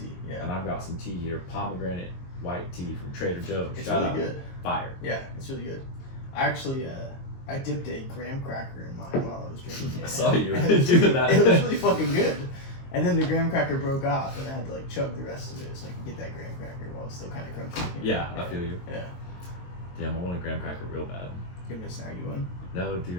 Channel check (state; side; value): late; right; 22 ms